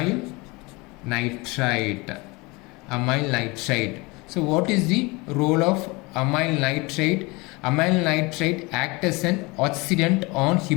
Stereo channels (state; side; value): quieter; right; 25.3 dB